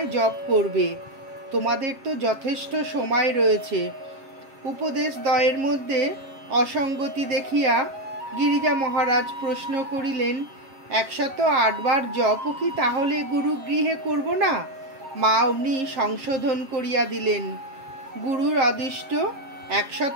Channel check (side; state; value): left; late; 7.5 ms